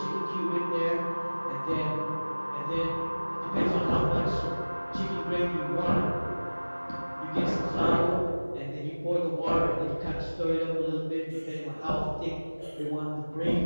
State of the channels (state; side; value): inverted; both; correlation -1.00